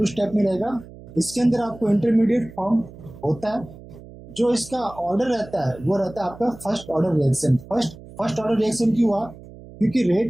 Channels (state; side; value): noise; right; hum, 18 dB below the sound